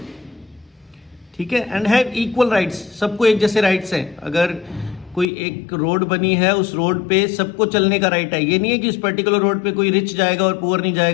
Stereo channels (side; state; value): right; drops out; at 5.2 s